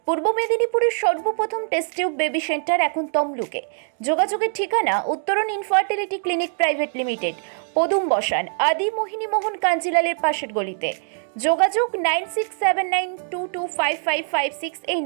পূর্ব মেদিনীপুরের সর্বপ্রথম টেস্ট টিউব বেবি সেন্টার এখন তমলুকে। যোগাযোগের ঠিকানা উত্তরণ ইনফার্টিলিটি ক্লিনিক প্রাইভেট লিমিটেড, পদুম বসান, আদি মোহিনী মোহন কাঞ্জিলালের পাশের গলিতে। যোগাযোগ 9679225556 এই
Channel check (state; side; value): silent; left; digital silence